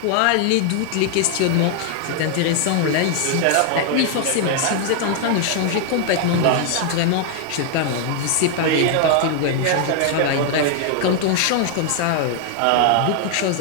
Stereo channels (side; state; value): both; different; correlation 0.00